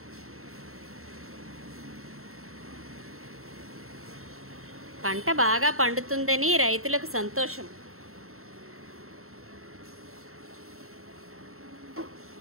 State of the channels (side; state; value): left; late; 0.63 ms